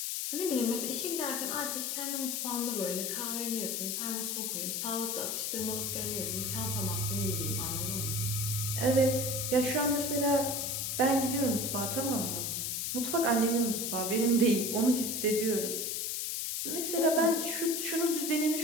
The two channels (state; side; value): noise; left; hiss, 1 dB below the sound